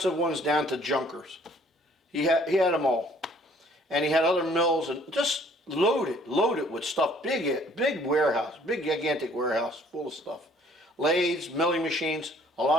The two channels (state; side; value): normal; both; correlation 0.58